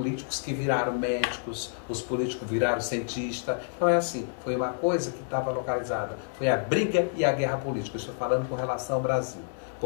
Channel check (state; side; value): silent; right; digital silence